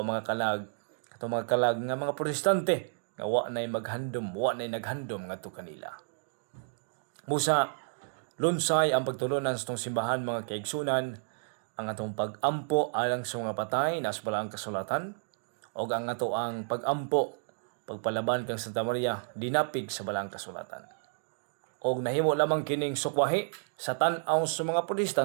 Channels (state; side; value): silent; left; digital silence